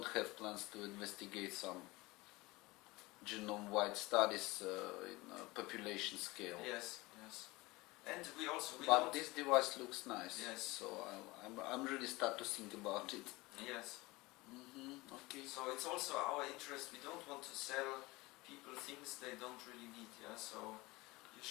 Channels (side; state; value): right; quieter; 21.9 dB